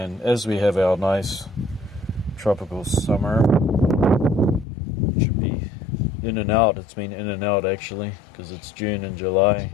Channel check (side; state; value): right; drops out; at 4.7 s